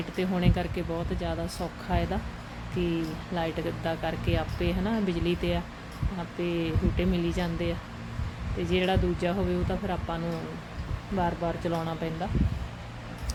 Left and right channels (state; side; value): identical; both; correlation 1.00